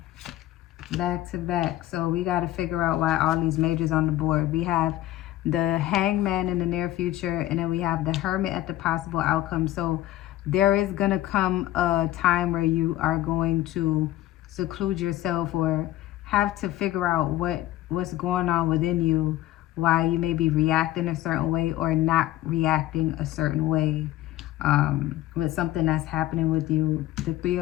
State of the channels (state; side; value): quieter; right; 14.6 dB